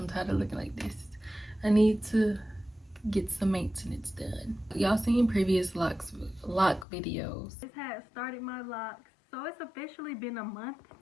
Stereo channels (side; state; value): right; drops out; at 6.9 s